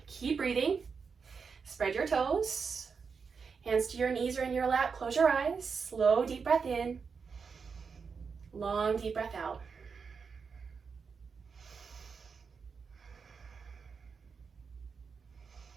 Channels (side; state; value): left; quieter; 5.5 dB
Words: Keep breathing. Spread your toes. Hands to your knees or in your lap. Close your eyes. Slow, deep breath in. Long, deep breath out.